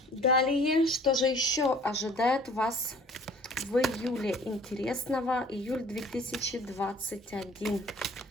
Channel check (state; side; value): normal; both; correlation 0.51